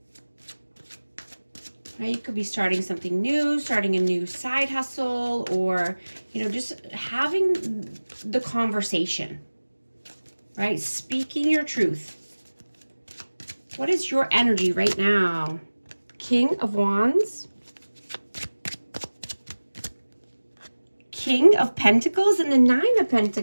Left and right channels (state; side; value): inverted; both; correlation -1.00